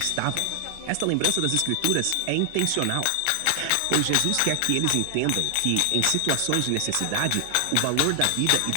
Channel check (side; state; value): both; different; correlation 0.00